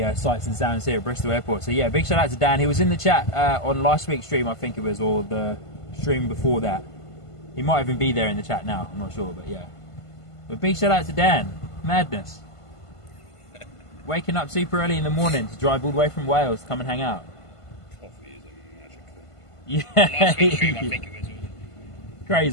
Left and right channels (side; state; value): right; late; 1.5 ms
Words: sights and sounds here at Bristol Airport. So yeah, big shout out to Dan. He was in the chat on last week's stream, I think it was, or the stream before that. He might even be there in the chat now, I'm not sure, but yeah. But big shout out to Dan. Madness. Waking up super early in the morning to drive all the way from Wales to come and hang out. Coffee is a magical. Yeah. Last week's stream, I think it was.